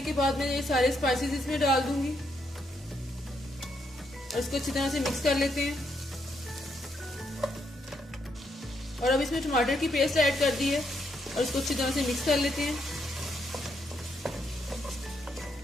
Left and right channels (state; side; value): normal; both; correlation 0.77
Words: के बाद मैं ये सारे स्पाइसेस इसमें डाल दूंगी और इसको अच्छी तरह से मिक्स कर लेते हैं। और अब इसमें टमाटर की पेस्ट ऐड कर दी है और इसको अच्छी तरह से मिक्स कर लेते हैं।